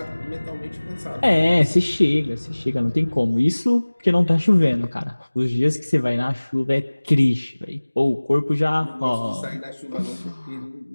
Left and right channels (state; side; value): inverted; both; correlation -1.00